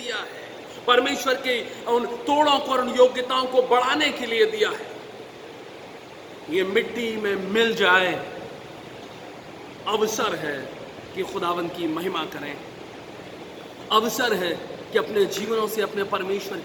है, परमेश्वर के उन तोड़ों को और उन योग्यताओं को बढ़ाने के लिए दिया है, ये मिट्टी में मिल जाए। अवसर है कि खुदावंद की महिमा करें, अवसर है कि अपने जीवनों से अपने परमेश्वर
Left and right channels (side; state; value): both; identical; correlation 1.00